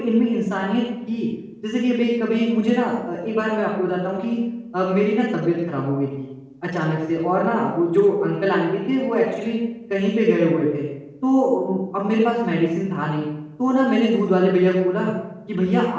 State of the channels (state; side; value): identical; both; correlation 1.00